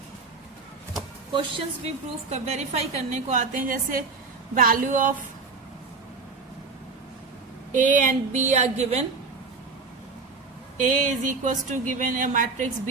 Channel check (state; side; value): quieter; left; 4.3 dB